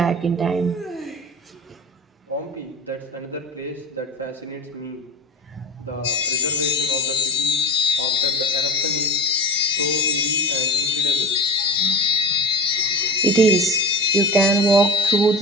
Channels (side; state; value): both; normal; correlation 0.31